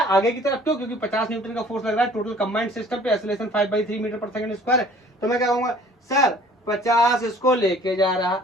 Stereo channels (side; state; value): both; normal; correlation 0.52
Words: आगे की तरफ, क्यों, क्योंकि 50 न्यूटन का फोर्स लग रहा है टोटल कंबाइंड सिस्टम पे, acceleration 5/3 metre per second square है। तो मैं क्या कहूंगा, सर 50 इसको लेके जा रहा